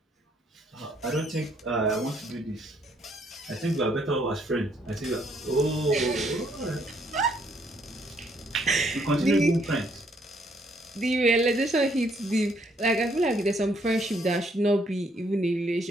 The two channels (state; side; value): normal; both; correlation 0.69